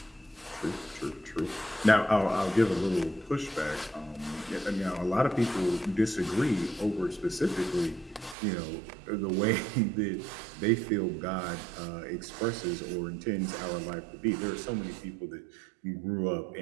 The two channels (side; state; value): left; drops out; at 8.3 s